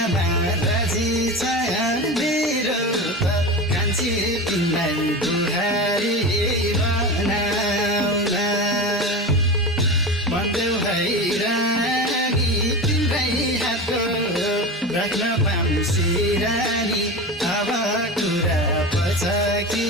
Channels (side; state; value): both; normal; correlation 0.26